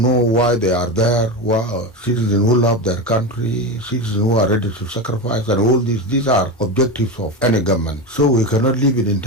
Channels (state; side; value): normal; both; correlation 0.19